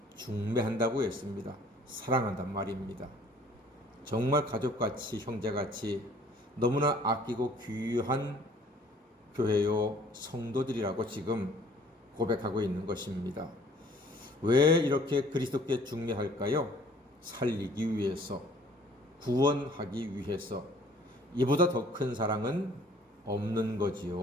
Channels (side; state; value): both; normal; correlation 0.55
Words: 중매한다고 했습니다. 사랑한단 말입니다. 정말 가족같이, 형제같이 너무나 아끼고 귀한 교회요 성도들이라고 지금 고백하고 있는 것입니다. 왜 이렇게 그리스도께 중매할까요? 살리기 위해서, 구원하기 위해서. 이보다 더 큰 사랑은 없는